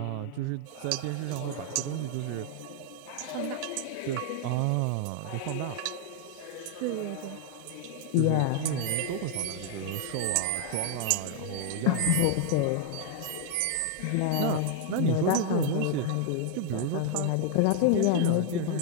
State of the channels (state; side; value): different; both; correlation 0.00